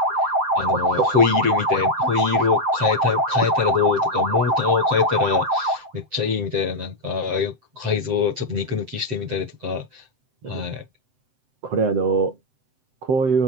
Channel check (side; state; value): left; late; 7.8 ms